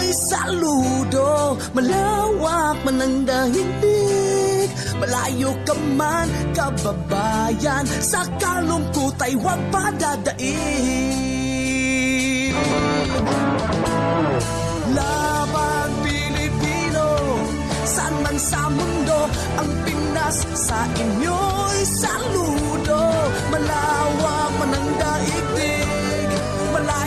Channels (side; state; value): both; identical; correlation 1.00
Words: saludo. Malawak man ang daigdig, malayo ka man kababayan, sa kalungkot ay huwag padadaig. Laban Pilipino, saan man sa mundo, ang Pinas sa inyo'y saludo. Malawak man ang daigdig,